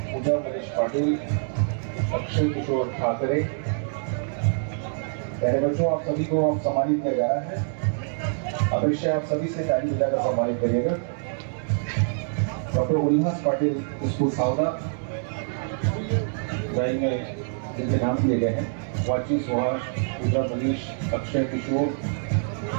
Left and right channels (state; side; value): silent; left; 61 dB below the other